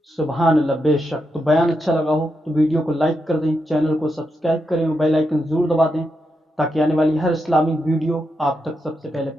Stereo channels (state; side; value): normal; both; correlation 0.84